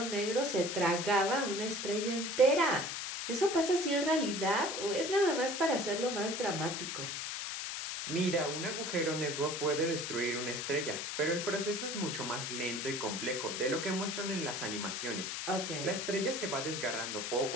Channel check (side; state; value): left; noise; hiss, 4 dB below the sound